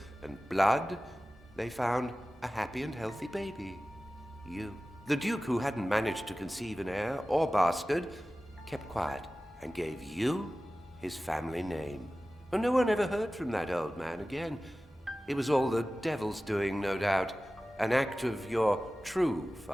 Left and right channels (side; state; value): both; normal; correlation 0.96